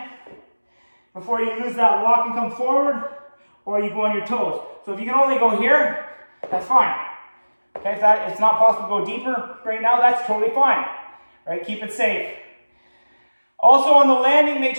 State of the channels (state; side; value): inverted; both; correlation -1.00